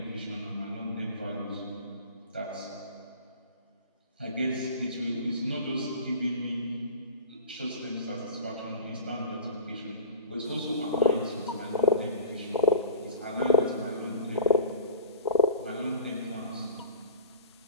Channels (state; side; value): inverted; both; correlation -0.39